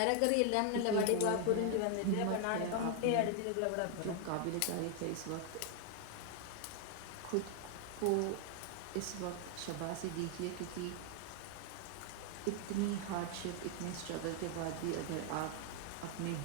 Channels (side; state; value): both; different; correlation 0.00